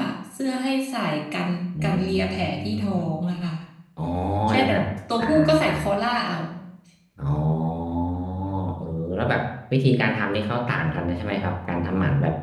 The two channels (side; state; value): both; identical; correlation 1.00